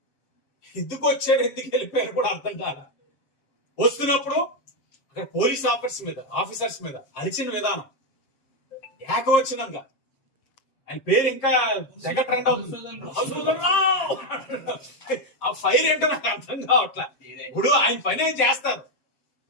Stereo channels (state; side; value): late; right; 7.5 ms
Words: ఎందుకు వచ్చారు, ఎందుకు వెళ్ళిపోయారు కూడా అర్థం కాల. వస్తున్నప్పుడు అక్కడ పోలీస్ ఆఫీసర్స్ మీద అరిచిన విధానం ఏకవచనంగా, ఆయన పేరు ఇంకా తెగ ట్రెండ్ అవుతుంది. ఆ ఫైర్ ఏంటో నాకు అర్థం కావట్లా. ఇప్పుడు ఆయన పని ఏం చేస్తారు.